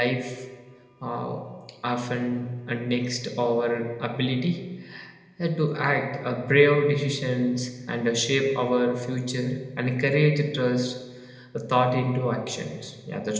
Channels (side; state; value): both; identical; correlation 1.00